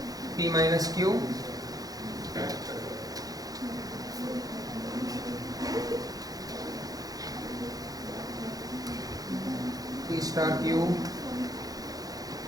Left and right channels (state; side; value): late; left; 0.18 ms